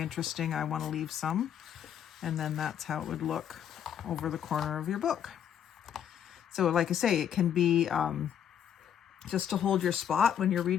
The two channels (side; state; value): right; quieter; 9.3 dB